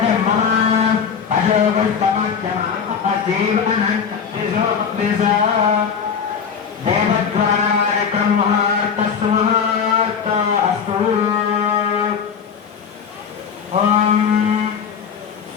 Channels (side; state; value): right; quieter; 6.8 dB